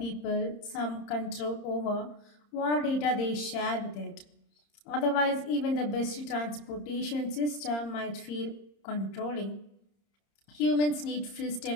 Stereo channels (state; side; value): late; right; 30 ms